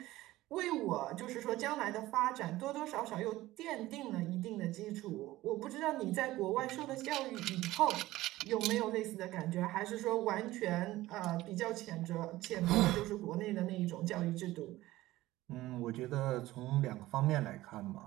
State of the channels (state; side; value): quieter; left; 16.9 dB